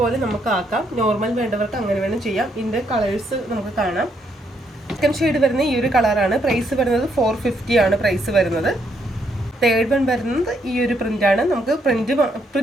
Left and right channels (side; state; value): both; normal; correlation 0.74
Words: പോലെ നമുക്ക് ആക്കാം. നോർമൽ വേണ്ടവർക്ക് അങ്ങനെ വേണം ചെയ്യാം. ഇതിൻ്റെ കളേഴ്സ് നമുക്ക് കാണാം. സെക്കൻഡ് ഷെയ്ഡ് വരുന്ന ഈ ഒരു കളറാണ്. പ്രൈസ് വരുന്നത് 450 ആണ് പ്രൈസ് വരുന്നത്. തേർഡ് വൺ വരുന്നത് ഈ ഒരു പ്രിന്റാണ്. നമുക്ക്